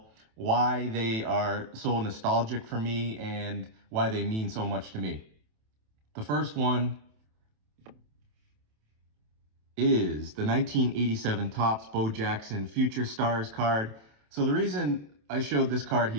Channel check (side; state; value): left; late; 27 ms